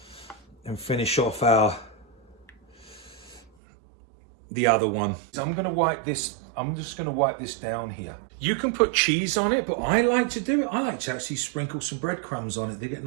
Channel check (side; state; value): left; drops out; at 3.5 s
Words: and finish off the other one. So I'm gonna wipe this, I'm just gonna wipe this down here. You can put cheese on it, but I like to do it. I like to actually sprinkle some breadcrumbs on it. They get